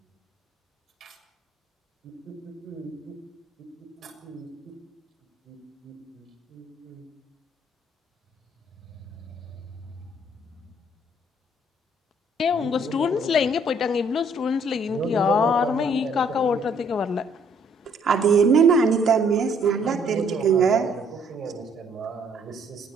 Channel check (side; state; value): both; normal; correlation 0.64